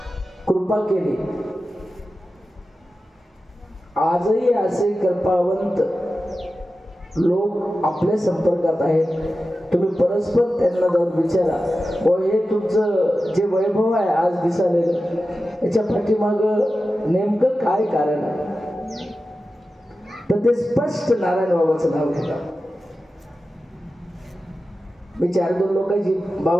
कृपा केली, आजही असे कृपावंत लोक आपल्या संपर्कात आहेत. तुम्ही परस्पर त्यांना जाऊन विचारा, व हे तुमचं जे वैभव आहे आज दिसालेलं, याच्या पाठीमाग नेमकं काय कारण आहे, तर ते स्पष्ट नारायण बाबाचं नाव घेतात. मी 4-2 लोकांची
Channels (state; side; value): normal; both; correlation 0.93